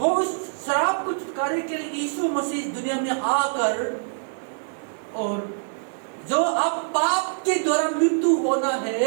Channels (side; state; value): left; silent; digital silence